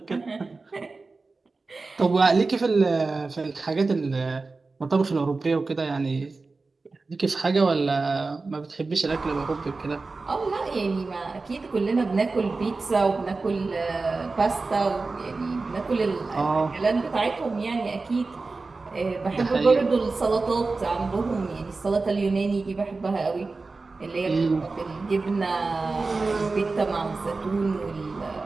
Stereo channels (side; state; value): left; quieter; 3.8 dB